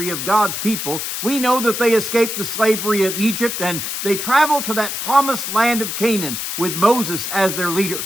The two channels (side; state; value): left; noise; hiss, 4 dB below the sound